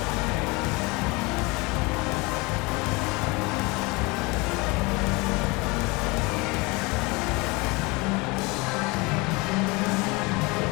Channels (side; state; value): right; quieter; 25.7 dB